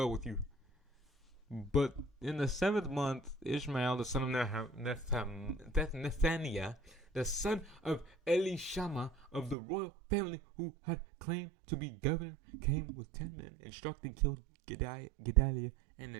with you." But in the 7th month, Ishmael the son of Nethaniah, the son of Elishama of the royal family who had claimed to be governor, came with 10 men and struck and killed Gedaliah and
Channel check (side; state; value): left; drops out; at 9.6 s